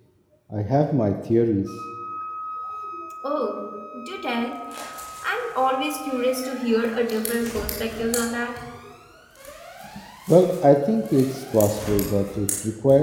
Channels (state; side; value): identical; both; correlation 1.00